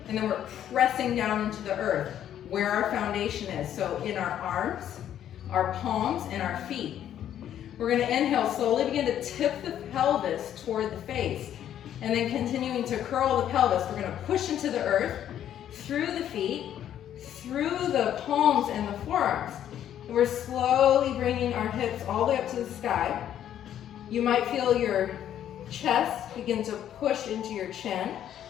And then we're pressing down into the earth where our foundation is. So in our arms, our palms, and our feet. We're gonna inhale, slowly begin to tip the pelvis toward the face. And then continuing to curl the pelvis, we're gonna push into the earth, through the feet, through the palms and the forearms. And we're slowly bringing our hips all the way up to the sky. You might feel your chest begin to push into your chin.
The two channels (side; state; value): right; quieter; 10.6 dB